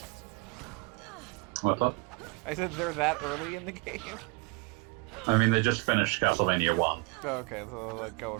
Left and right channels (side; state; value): left; quieter; 28.8 dB